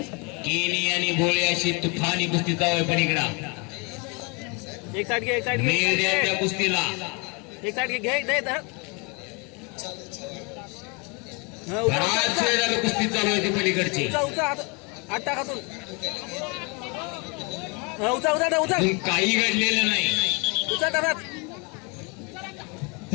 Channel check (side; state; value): right; quieter; 31.3 dB